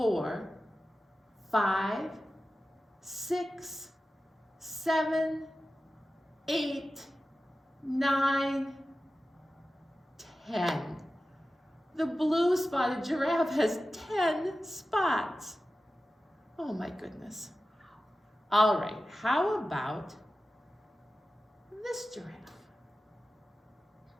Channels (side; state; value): both; normal; correlation 0.94